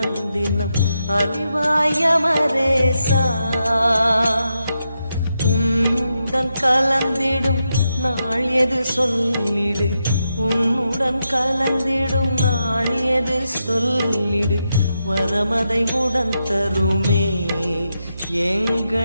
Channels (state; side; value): inverted; both; correlation -0.85